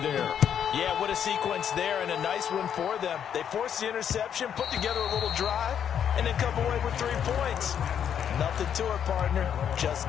Yeah, what a sequence there, and a nice one for them. They forced the interception, put together a little drive, and then come away with 3 points. Nothing to it, partner. Just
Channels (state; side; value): quieter; right; 8.7 dB